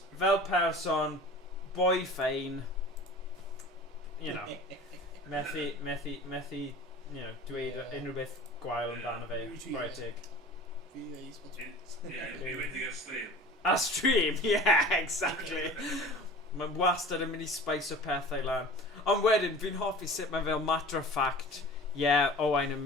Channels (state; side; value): normal; both; correlation 0.40